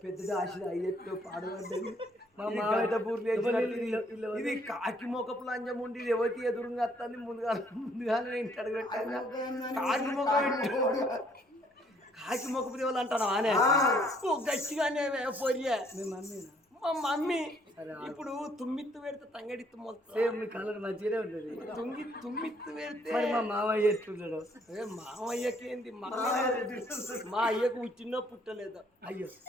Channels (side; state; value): both; normal; correlation 0.65